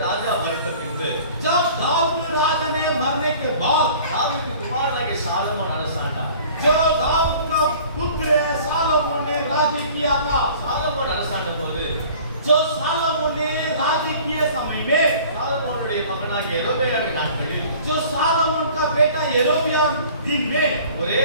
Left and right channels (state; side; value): inverted; both; correlation -0.48